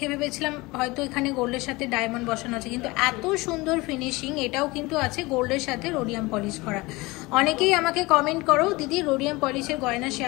ভেবেছিলাম হয়তো এখানে গোল্ডের সাথে ডায়মন্ড বসানো আছে, কিন্তু এত সুন্দর ফিনিশিং। এটাও কিন্তু আছে গোল্ডের সাথে রোডিয়াম পলিশ করা। অনেকেই আমাকে কমেন্ট করো, দিদি রোডিয়াম পলিশের গয়না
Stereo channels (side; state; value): right; quieter; 22.6 dB